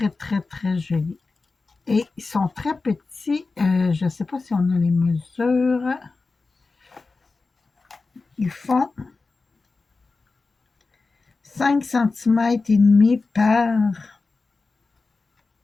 très, très joli. Et ils sont très petits. Je ne sais pas si on a les mesures. Ils font 5 cm et demi par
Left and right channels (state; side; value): quieter; right; 3.9 dB